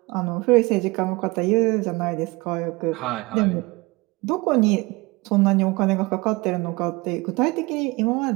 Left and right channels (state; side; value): quieter; left; 23.8 dB